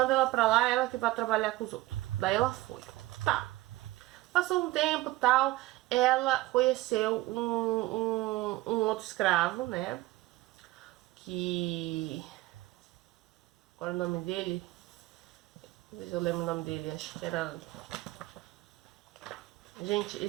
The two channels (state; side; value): quieter; left; 18.2 dB